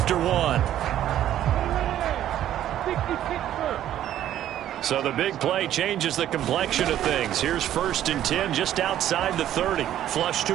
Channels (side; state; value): left; quieter; 11.8 dB